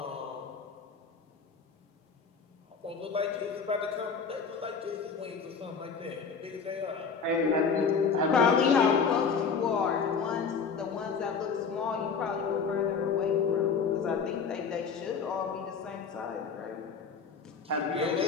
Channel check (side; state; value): right; quieter; 5.6 dB